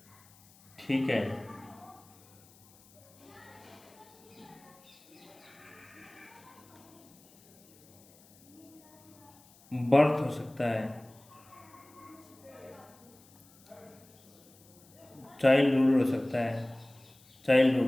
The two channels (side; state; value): left; noise; hiss, 27 dB below the sound